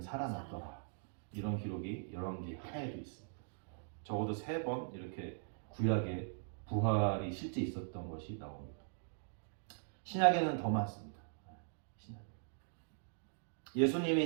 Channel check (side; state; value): left; silent; digital silence